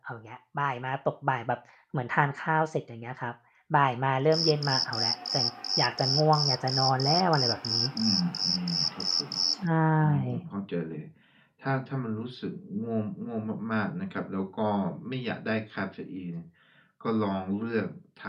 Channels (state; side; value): identical; both; correlation 1.00